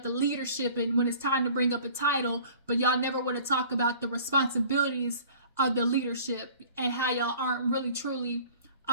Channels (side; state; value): both; inverted; correlation -0.48